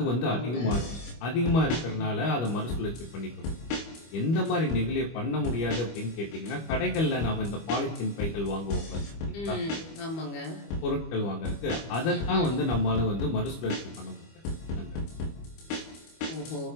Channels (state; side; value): late; right; 25 ms